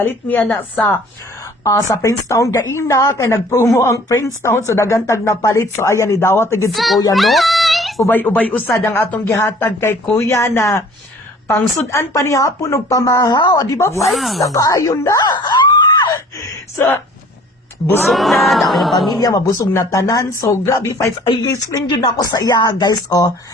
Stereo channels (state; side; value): normal; both; correlation 0.51